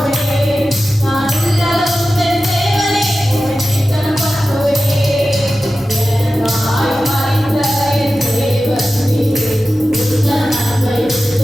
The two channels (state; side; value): normal; both; correlation 0.94